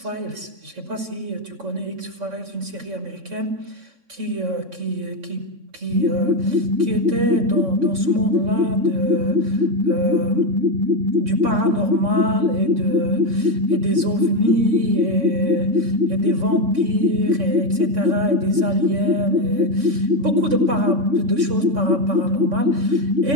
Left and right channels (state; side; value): late; left; 3.6 ms